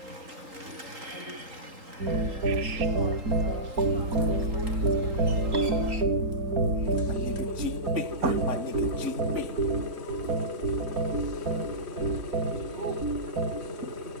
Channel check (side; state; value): left; late; 3.8 ms